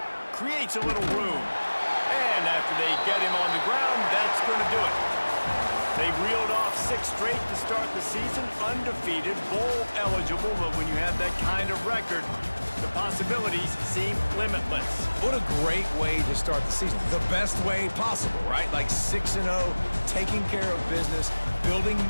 Creates a little room. And after they get him on the ground, that's going to do it. They reeled off 6 straight to start the season, undefeated, bowl eligible, but when you have that kind of record, the possibilities seem limitless. What a great way to start the season. The best way possible, right? Like 6-0, taking care of business, building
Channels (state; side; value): inverted; both; correlation -1.00